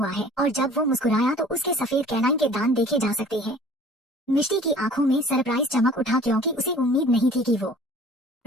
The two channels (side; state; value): both; normal; correlation 0.49